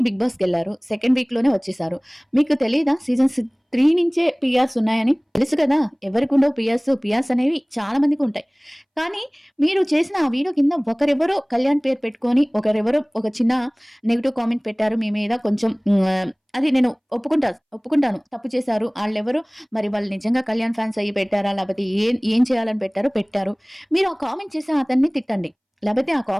బిగ్ బాస్కి వెళ్ళారు, సెకండ్ వీక్లోనే వచ్చేసారు. మీకు తెలియదా సీజన్ 3 నుంచే పిఆర్స్ ఉన్నాయని? తెలుసు కదా ఎవరికి ఉండవు పిఆర్స్ అనేవి చాలా మందికి ఉంటాయి. కానీ మీరు చేసిన ఆ వీడియో కింద ఒకరెవరో కళ్యాణ్ పేరు పెట్టుకొని ఒకరెవరో ఒక చిన్న నెగిటివ్ కామెంట్ పెట్టారు మీ మీద. కొంచెం అది నేను ఒప్పుకుంటాను, తప్పు చేశారు. వాళ్ళెవరు మరి, వాళ్ళు నిజంగా కళ్యాణ్ ఫ్యాన్స్ అయ్యి పెట్టారా, లేకపోతే ఏం చేయాలని పెట్టారు. మీరు ఆ కామెంట్ చేసి అతన్ని తిట్టండి, లేకపోతే ఆ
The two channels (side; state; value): both; identical; correlation 1.00